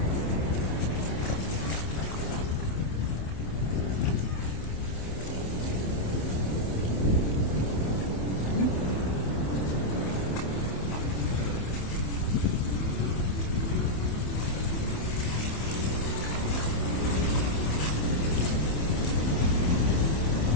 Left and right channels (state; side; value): late; right; 27 ms